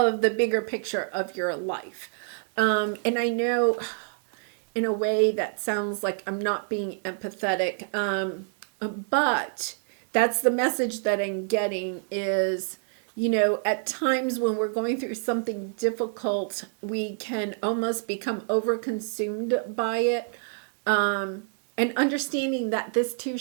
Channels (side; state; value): left; silent; 60 dB below the other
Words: the bigger picture of your life. And I know in a way that sounds like I'm not being empathetic, but that's the message that I'm getting is, at times when we're going through something difficult, we can almost become overconsumed by it, and understanding that this too